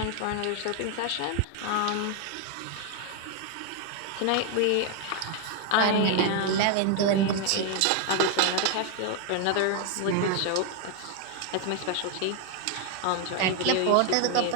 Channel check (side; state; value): both; different; correlation 0.01